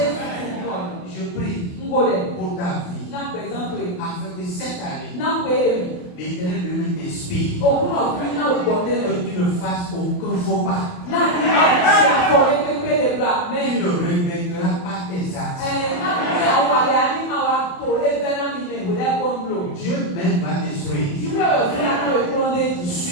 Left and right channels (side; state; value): right; late; 28 ms